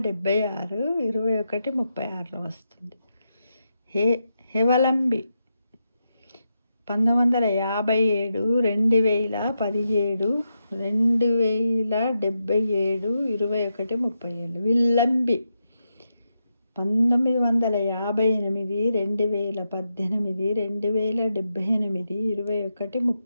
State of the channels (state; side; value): inverted; both; correlation -0.85